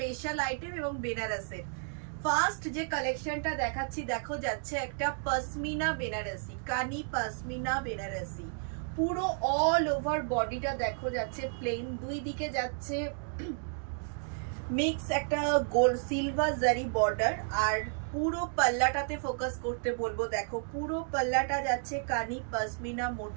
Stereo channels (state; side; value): silent; left; 56 dB below the other